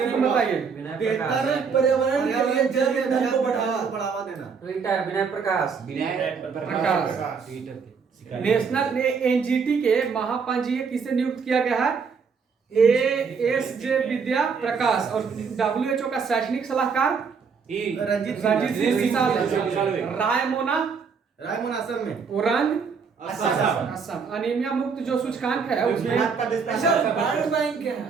बताइए। बेहतर पर्यावरण के लिए जल ईंधन को बढ़ावा देना। रिटायर विनय प्रकाश। नेशनल एनजीटी के महापंजीयक किसे नियुक्त किया गया है? एएसजे विद्या प्रकाश। और डब्ल्यूएचओ का शैक्षणिक सलाहकार रंजीत सिंह विशाल। रायमोना असम में। ओरंग असम। अनीमिया मुक्त जो सूचकांक है उसमें अच्छा, वर्ल्ड बैंक क्या है?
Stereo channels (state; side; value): quieter; left; 5.7 dB